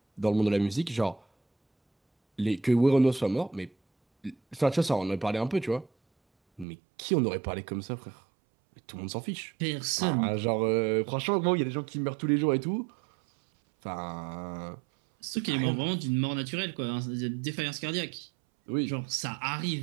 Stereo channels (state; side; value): drops out; left; at 6.7 s